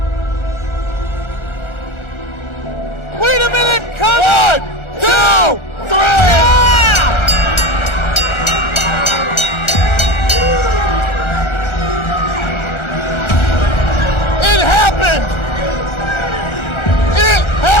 Wait a minute, come on! 1, 2, 3! Yeah! It happened! It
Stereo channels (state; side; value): late; right; 1.4 ms